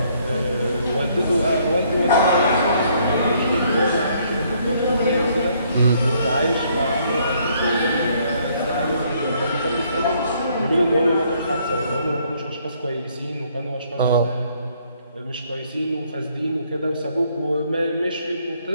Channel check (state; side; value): inverted; both; correlation -0.67